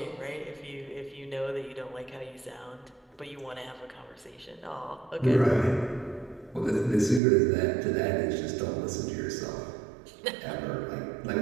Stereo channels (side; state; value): left; drops out; at 7.2 s